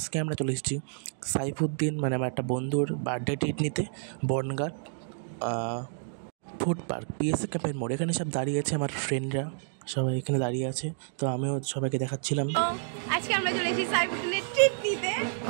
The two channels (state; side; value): silent; left; digital silence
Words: আমরা চলে এসেছি সাইফুদ্দিন, মানে আমার একটা বন্ধুর বার্থডে ট্রিট নিতে বনগাঁ ফুড পার্ক পিএসএ ক্যাম্পের মোড়। এখানে সব দাঁড়িয়ে আছে, আমার ফ্রেন্ডরা সবাই এখানে দাঁড়িয়ে আছে। তো আমিও সবাইকে দেখাচ্ছিলাম। আজকে আমরা চলে এসেছি সাইফুদ্দিনের ট্রিট নিতে।